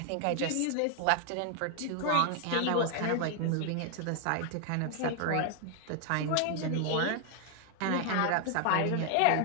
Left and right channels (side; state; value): both; different; correlation 0.00